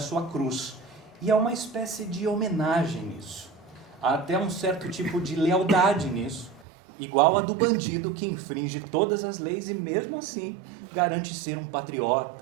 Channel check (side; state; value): left; drops out; at 6.7 s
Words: cruz, e há uma espécie de homenagem nisso. Há até um certo tipo de lealdade nisso, igual a do bandido que infringe todas as leis e mesmo assim garante ser um